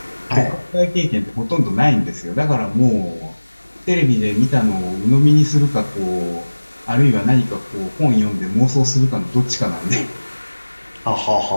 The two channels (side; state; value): both; inverted; correlation -1.00